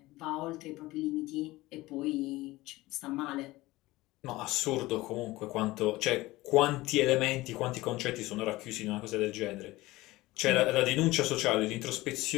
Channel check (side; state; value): right; quieter; 19.1 dB